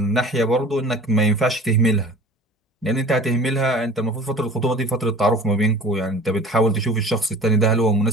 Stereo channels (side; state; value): both; normal; correlation 0.43